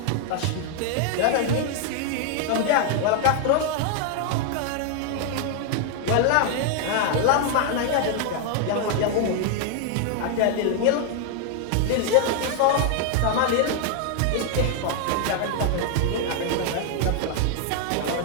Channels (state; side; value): different; both; correlation 0.00